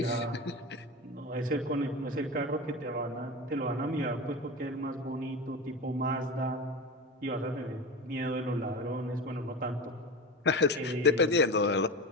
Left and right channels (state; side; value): normal; both; correlation 0.26